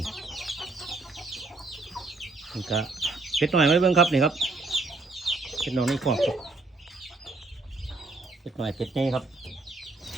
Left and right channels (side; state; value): left; quieter; 3.4 dB